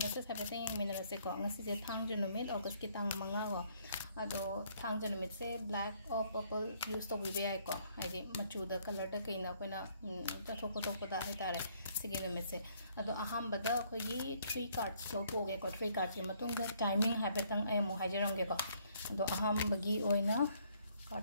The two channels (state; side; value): inverted; both; correlation -0.66